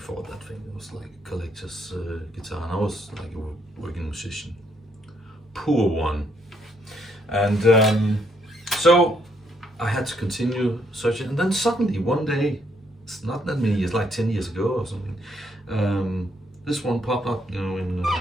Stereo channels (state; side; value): normal; both; correlation 0.73